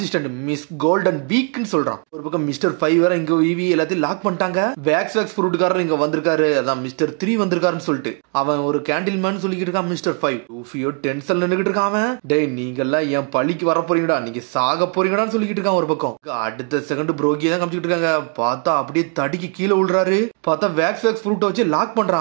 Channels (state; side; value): quieter; left; 39.0 dB